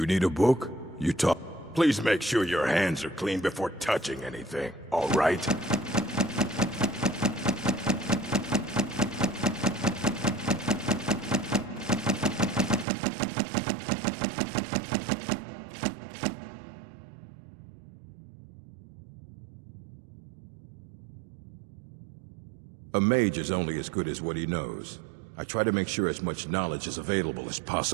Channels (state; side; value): drops out; left; at 12.9 s